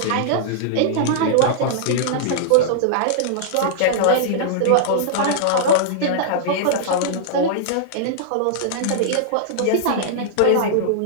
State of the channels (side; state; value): both; different; correlation -0.02